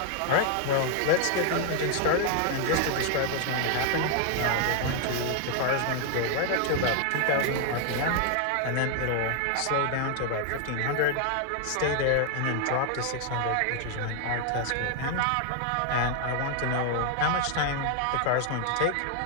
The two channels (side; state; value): both; different; correlation 0.00